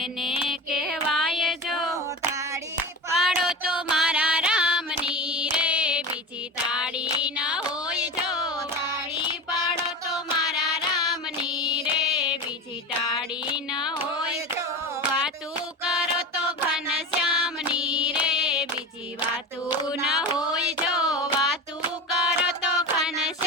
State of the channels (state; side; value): normal; both; correlation 0.28